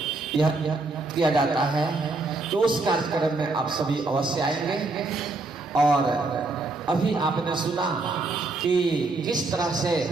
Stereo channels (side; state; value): left; quieter; 3.4 dB